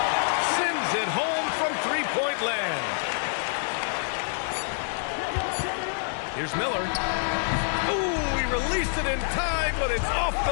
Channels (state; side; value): silent; right; digital silence